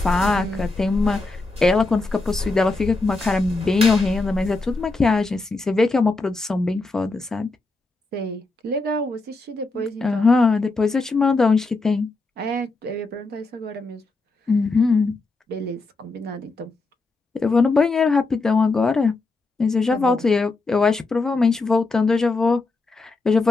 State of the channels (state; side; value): quieter; right; 3.5 dB